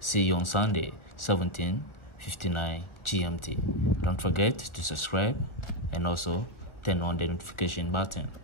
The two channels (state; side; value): late; right; 1.4 ms